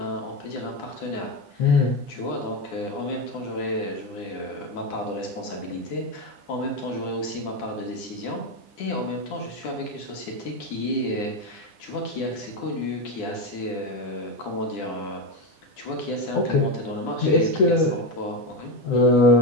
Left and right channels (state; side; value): late; right; 10 ms